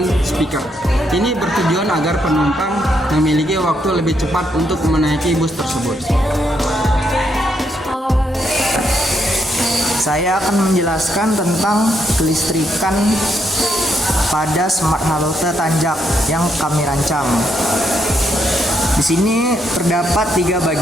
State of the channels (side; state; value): both; normal; correlation 0.77